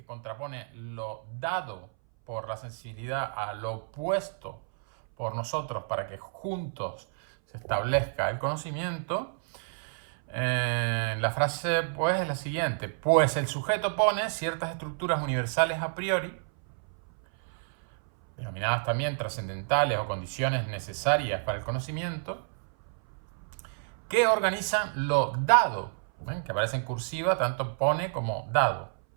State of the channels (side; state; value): left; silent; 58 dB below the other